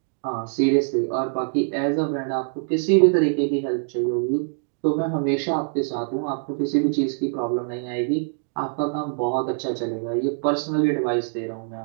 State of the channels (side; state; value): left; silent; digital silence